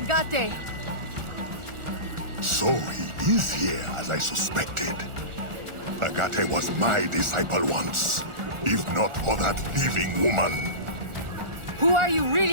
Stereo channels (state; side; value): late; left; 1.4 ms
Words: So he is here, as I suspected. Agate was my disciple once, if not for that thieving woman. Who are you